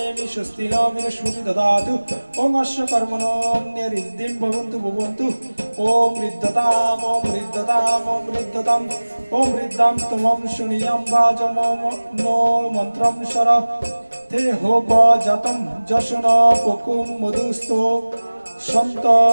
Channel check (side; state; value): both; inverted; correlation -1.00